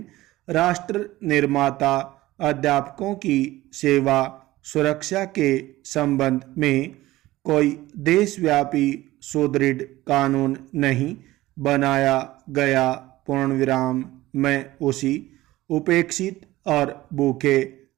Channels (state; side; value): quieter; left; 17.2 dB